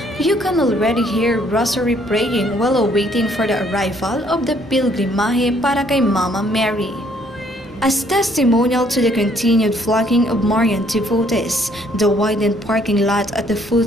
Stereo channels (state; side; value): normal; both; correlation 0.65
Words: you can already hear rosary praying while awaiting for the arrival of the Pilgrimahe para kay Mama Mary. As testimonial to the continued flocking of Marian devotees, the widened parking lot at the